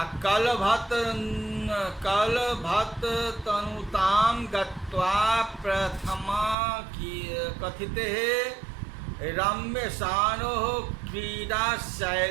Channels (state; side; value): drops out; left; at 6.6 s